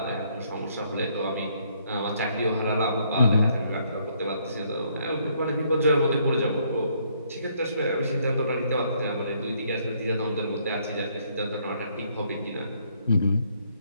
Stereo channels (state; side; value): inverted; both; correlation -0.69